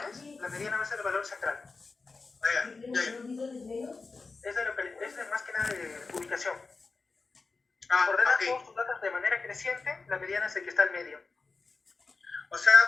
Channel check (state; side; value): quieter; right; 4.1 dB